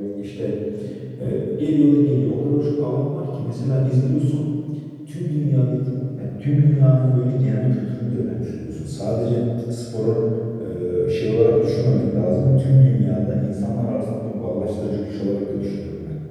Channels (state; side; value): identical; both; correlation 1.00